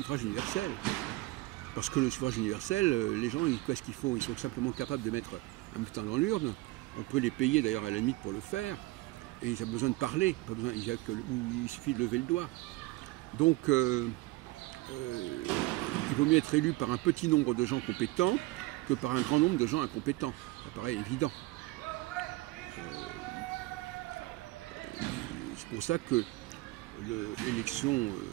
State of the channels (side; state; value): left; quieter; 20.1 dB